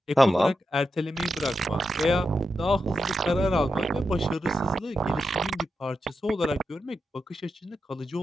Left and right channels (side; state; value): both; normal; correlation 0.87